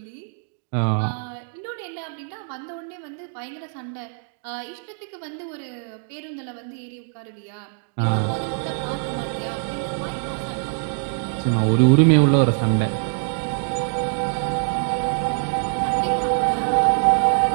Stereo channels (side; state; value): left; silent; 61 dB below the other